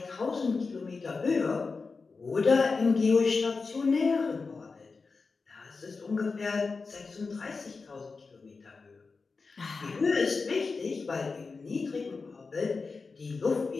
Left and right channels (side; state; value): right; quieter; 4.4 dB